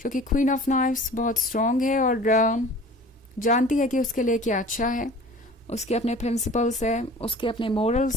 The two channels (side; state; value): both; normal; correlation 0.44